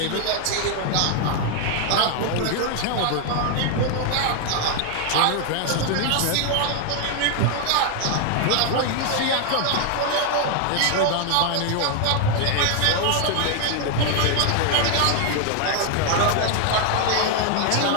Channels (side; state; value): both; different; correlation 0.00